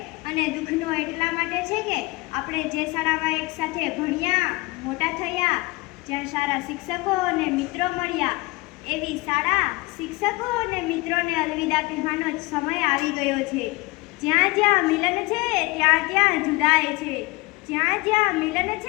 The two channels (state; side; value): quieter; right; 23.8 dB